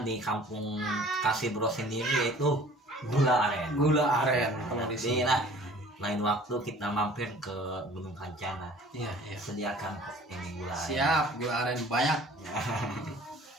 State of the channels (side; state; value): both; normal; correlation 0.49